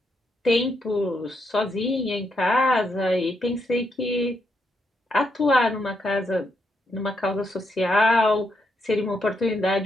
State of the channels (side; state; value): both; normal; correlation 0.79